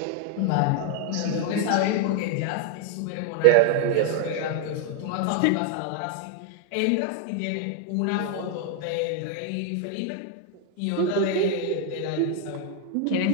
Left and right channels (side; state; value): both; different; correlation 0.00